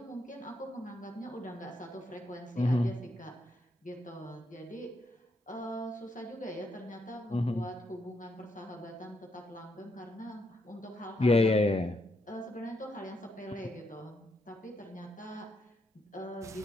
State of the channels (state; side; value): normal; both; correlation 0.78